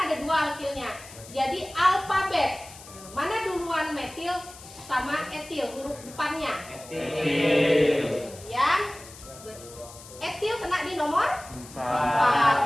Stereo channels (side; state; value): left; noise; hiss, 18 dB below the sound